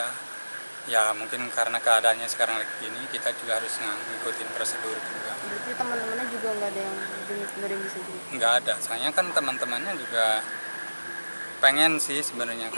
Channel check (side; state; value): both; inverted; correlation -1.00